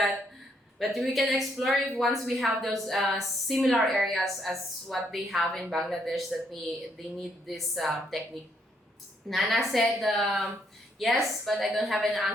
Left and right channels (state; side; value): normal; both; correlation 0.72